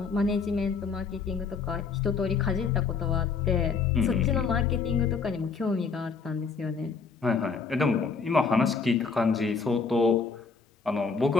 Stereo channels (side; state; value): right; quieter; 5.1 dB